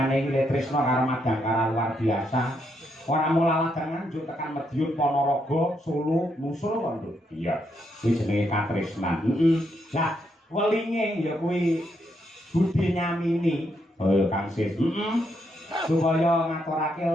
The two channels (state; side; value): normal; both; correlation 0.78